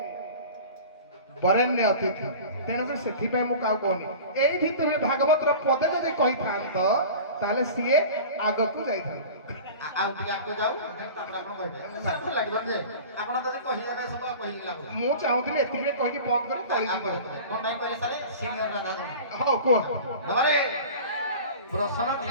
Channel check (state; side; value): inverted; both; correlation -0.37